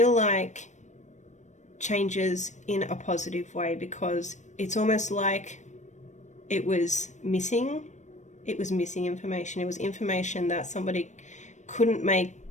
like changes in a positive way, because it's almost like it was missing information. It was information that somebody couldn't make,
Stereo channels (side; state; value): right; late; 0.34 ms